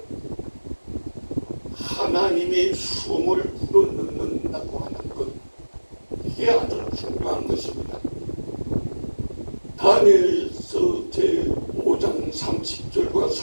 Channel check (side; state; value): both; inverted; correlation -1.00